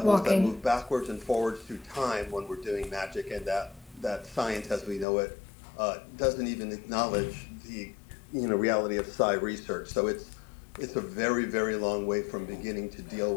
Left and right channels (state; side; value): drops out; right; at 5.1 s